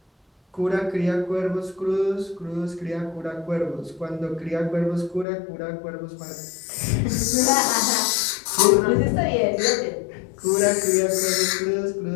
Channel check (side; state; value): right; drops out; at 5.2 s